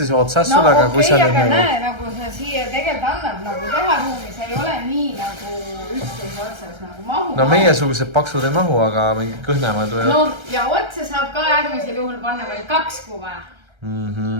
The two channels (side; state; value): left; late; 1.3 ms